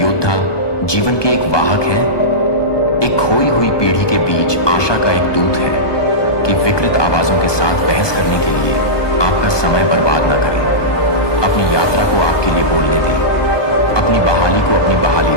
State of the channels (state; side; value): late; right; 1.2 ms